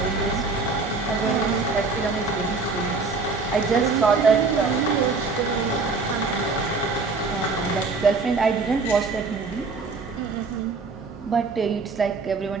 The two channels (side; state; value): left; quieter; 4.1 dB